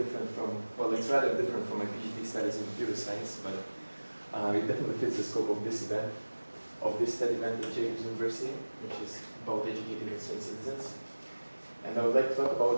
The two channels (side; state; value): both; inverted; correlation -1.00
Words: from, well, it's rather different from my PhD studies in computer science, but it definitely fits the scope of this event, of this TED event at Jacobs University, which is about educating concerned citizens. And I would like to talk